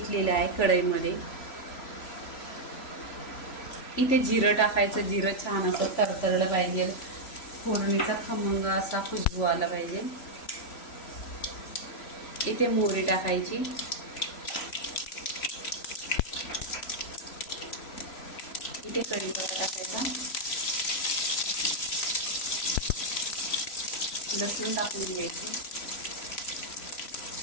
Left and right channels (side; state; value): right; late; 3.0 ms